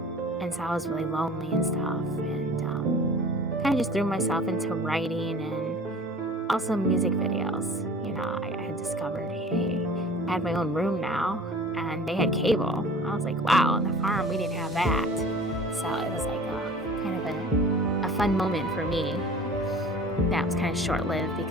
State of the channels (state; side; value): normal; both; correlation 0.44